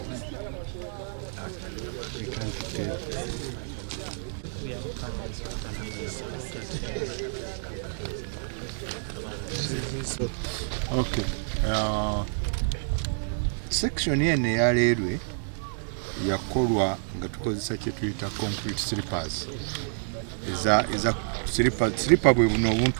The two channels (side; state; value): left; silent; 59 dB below the other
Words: okay. Section eno eya railway yakolwa nga tukozesa kye tuyita concrete slippers. Eza slipper bwe buno